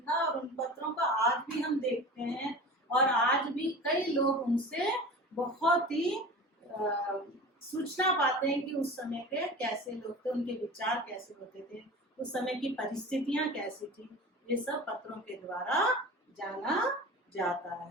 और उन पत्रों को आज भी हम देखते हैं और आज भी कई लोग उनसे बहुत ही सूचना पाते हैं कि उस समय के कैसे लोग थे, उनके विचार कैसे होते थे, उस समय की परिस्थितियां कैसी थी। ये सब पत्रों के द्वारा जाना जाता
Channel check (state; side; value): normal; both; correlation 0.35